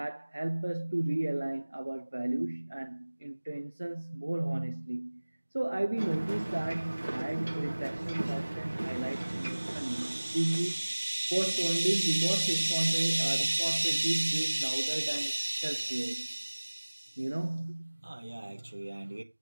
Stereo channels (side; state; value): both; inverted; correlation -1.00